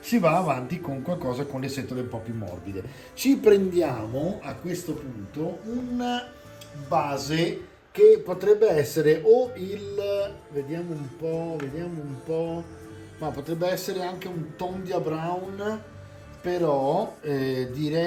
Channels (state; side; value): identical; both; correlation 1.00